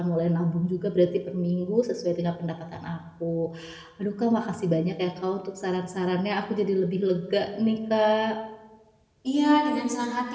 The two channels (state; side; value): identical; both; correlation 1.00